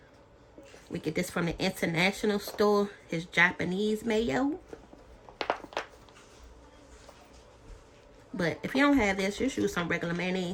We get this from the international store. His Japanese mayo. But if you don't have this, just use some regular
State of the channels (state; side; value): identical; both; correlation 1.00